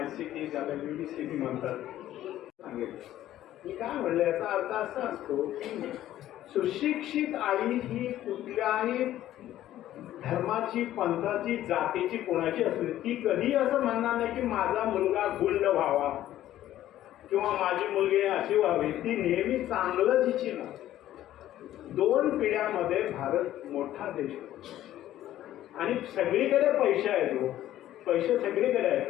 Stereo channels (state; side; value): quieter; right; 13.2 dB